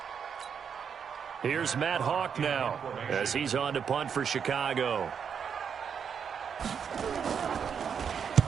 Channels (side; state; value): left; quieter; 7.2 dB